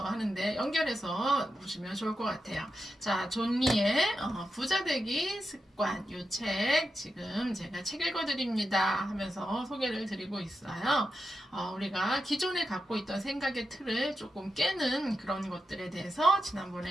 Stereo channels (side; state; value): both; normal; correlation 0.88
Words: 하는데 연결해서 보시면 좋을 것 같아요. 자, 존 리의 부자 되기 습관 이 책 지금 제가 책 읽어드립니다 하면서 소개를 드리고 있어요. 우리가 기존에 갖고 있던 생각의 틀을 조금 깨는 그런 것들에 대해서